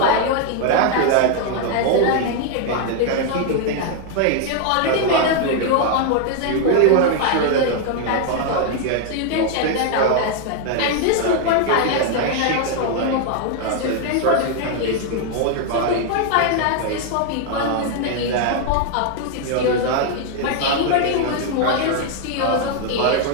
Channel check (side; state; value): both; different; correlation 0.00